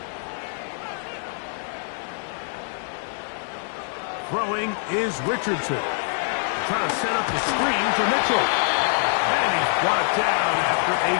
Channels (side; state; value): right; silent; digital silence